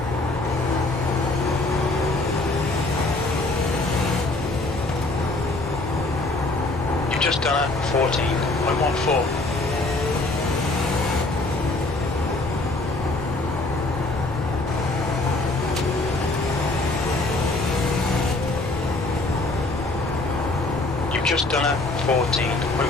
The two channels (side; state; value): right; quieter; 3.0 dB